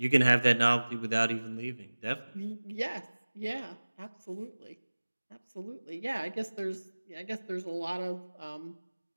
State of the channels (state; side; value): inverted; both; correlation -1.00